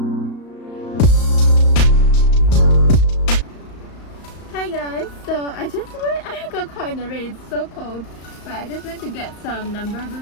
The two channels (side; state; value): right; late; 35 ms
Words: Hi guys, so I got caught in the rain, it's so cold. But I just went to get some number